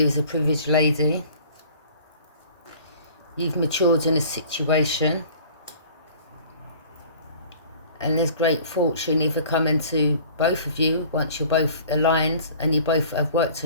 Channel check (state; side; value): inverted; both; correlation -0.48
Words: her as a privileged lady. You've matured in a situation. And there's great fortune either coming to both of you once you're both aligned and you both have worked